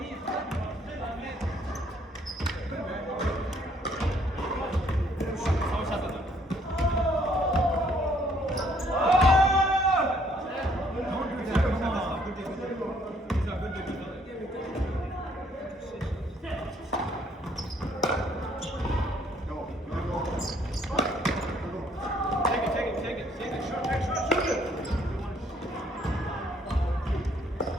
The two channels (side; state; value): both; normal; correlation 0.65